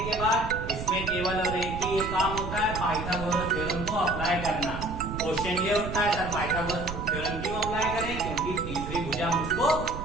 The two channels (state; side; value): noise; right; rumble, 7 dB below the sound